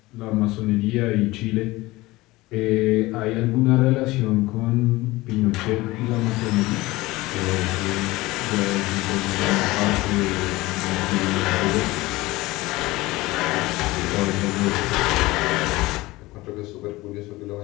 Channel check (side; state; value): right; quieter; 19.9 dB